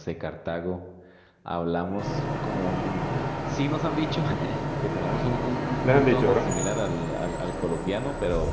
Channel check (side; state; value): both; identical; correlation 1.00